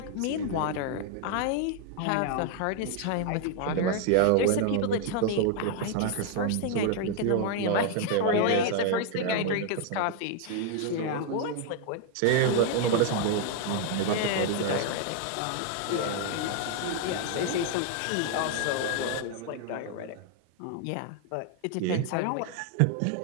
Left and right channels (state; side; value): different; both; correlation 0.00